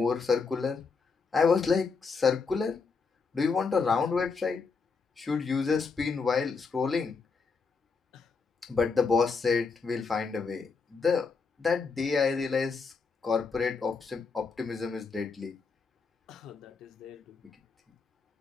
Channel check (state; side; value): quieter; right; 4.8 dB